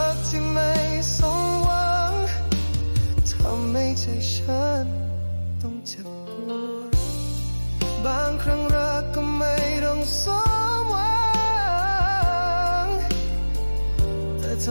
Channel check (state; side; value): inverted; both; correlation -1.00